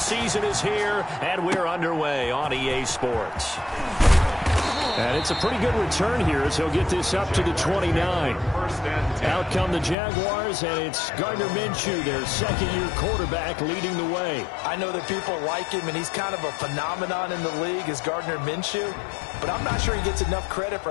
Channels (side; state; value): right; drops out; at 10.0 s